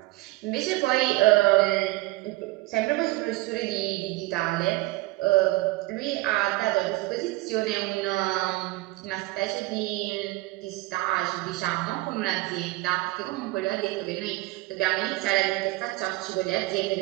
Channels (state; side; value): quieter; left; 20.3 dB